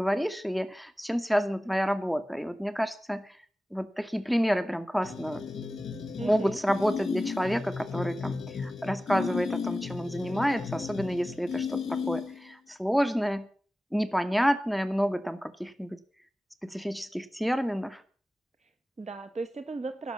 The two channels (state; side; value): normal; both; correlation 0.95